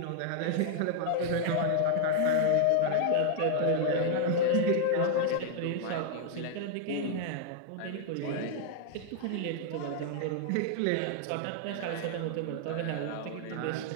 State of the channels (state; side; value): different; both; correlation 0.00